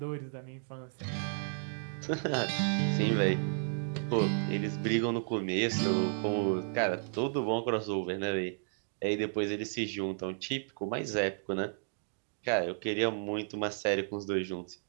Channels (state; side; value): silent; left; digital silence